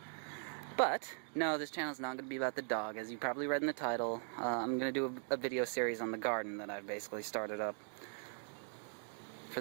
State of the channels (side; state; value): left; silent; 51 dB below the other